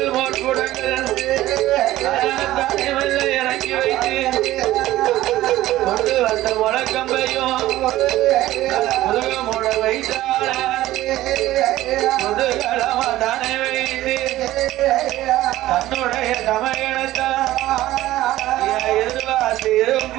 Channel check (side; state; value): left; quieter; 15.5 dB